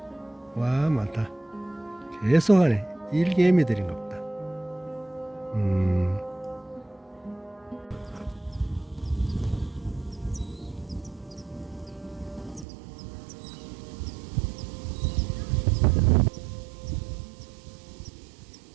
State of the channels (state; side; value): drops out; left; at 12.7 s